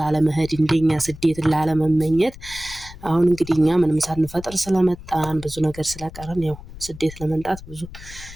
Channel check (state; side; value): noise; left; rumble, 16 dB below the sound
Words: እንደኛ ስደት ላለመመኘት። አሁን እንግዲህ እኛ ምንም ሳንፈጥር ስለመጣን ብዙ ነገር ስለቀረን ያው ስደት ለመምጣት ብዙ